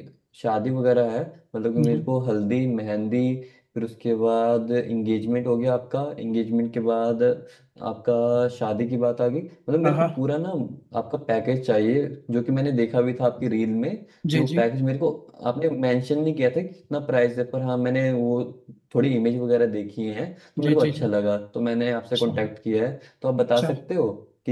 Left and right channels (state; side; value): identical; both; correlation 1.00